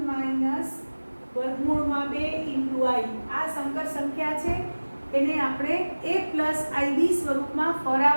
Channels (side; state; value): both; inverted; correlation -1.00